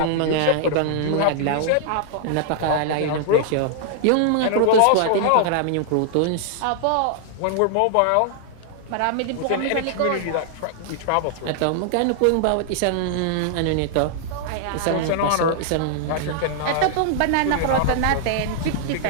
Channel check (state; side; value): different; both; correlation -0.01